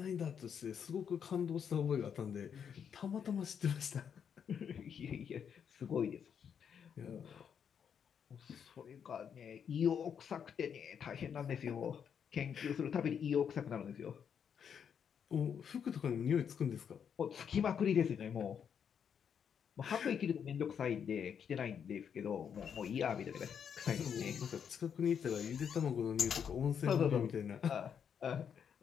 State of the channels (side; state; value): right; quieter; 7.7 dB